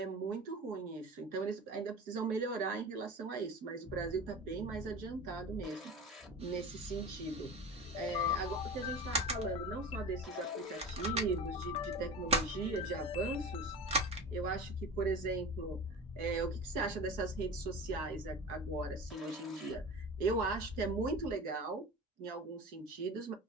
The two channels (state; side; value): normal; both; correlation 0.32